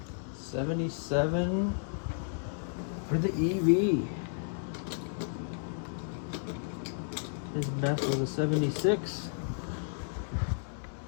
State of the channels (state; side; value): silent; right; digital silence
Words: '77 for the EV. His best was a 76.